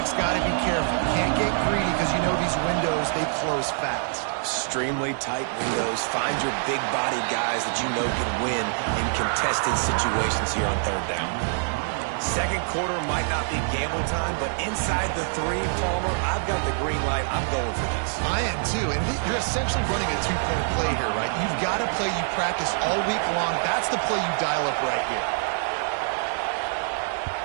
got to be careful. Can't get greedy because you know these windows, they close fast. Extremely tight windows. Find your big-bodied guys that you know can win in contested situations here on third down. Second quarter might not be gamble time, but inside the 3, Palmer, I've got the green light. I'm going for this. I am too, and you're essentially running a 2-point play here, right? You've got a play you practice all week long. That's the play you dial up right here.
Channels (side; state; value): left; silent; digital silence